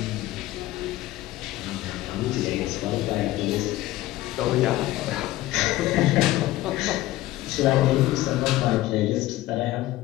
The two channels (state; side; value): quieter; right; 16.2 dB